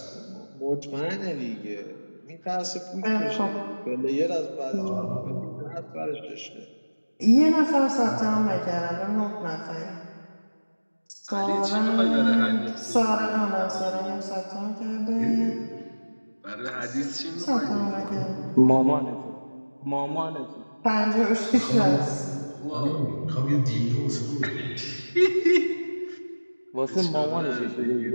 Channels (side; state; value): both; inverted; correlation -1.00